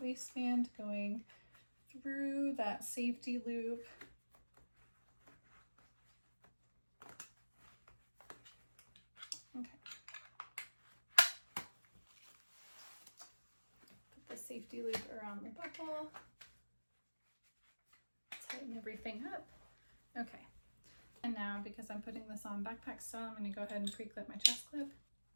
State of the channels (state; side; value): inverted; both; correlation -1.00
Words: waistband going through that safety loop. Okay. Put the safety loop around the buckle. Tighten everything up. Okay. And now, because I'm putting this on backpack style, I'm going to go ahead and pre-clip my chest clip.